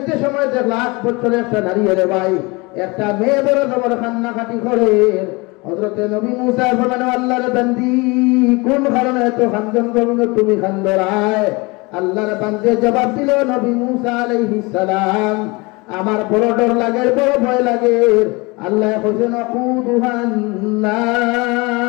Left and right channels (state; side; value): quieter; right; 25.9 dB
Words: সময় যে 1 বছরের একটা নারী রে ভাই, একটা মেয়ে বড় জবর কান্নাকাটি করে। হযরত নবী মুসা বলেন আল্লাহর বান্দি কোন কারণে এত খান্দন করো তুমি খান্দরায়? আল্লাহর বান্দে জবাব দিল নবী মুসা আলাইহিস সালাম আমার বড় ডর লাগে, বড় ভয় লাগে। আল্লাহ কইছেন ওয়াকুদুহান